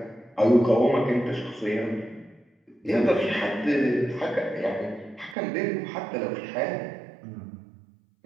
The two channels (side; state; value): left; drops out; at 5.4 s